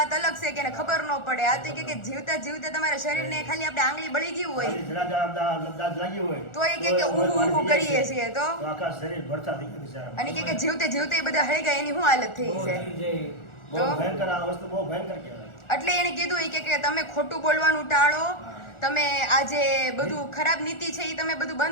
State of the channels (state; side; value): late; right; 1.4 ms